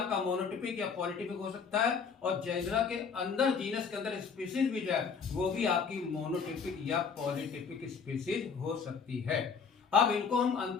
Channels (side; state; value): right; quieter; 5.9 dB